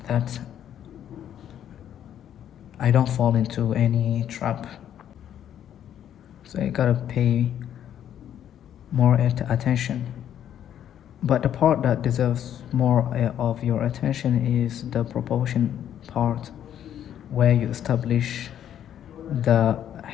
that I don't fall into any trap. So you gotta pay more attention. But the part that deserves more of your attention is the proportion part, where you establish the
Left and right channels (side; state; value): right; quieter; 10.2 dB